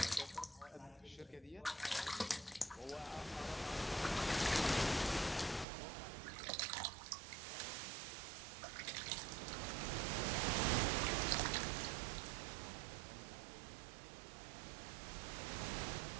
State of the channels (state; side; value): drops out; left; at 5.7 s